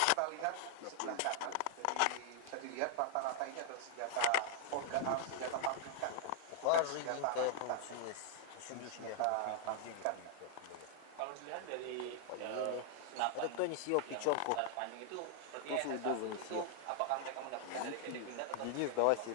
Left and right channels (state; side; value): different; both; correlation -0.01